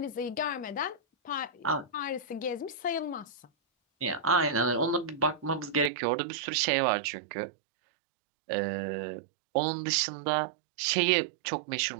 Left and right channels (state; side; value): drops out; left; at 5.9 s